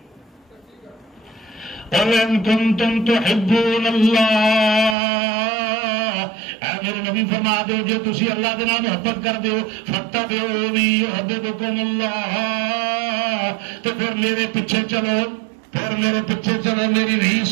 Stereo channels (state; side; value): drops out; left; at 5.0 s